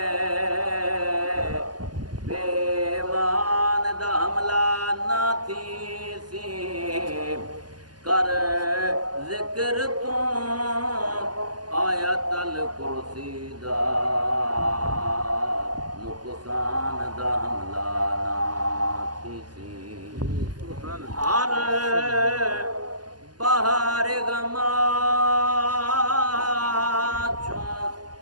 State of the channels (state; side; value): late; left; 0.70 ms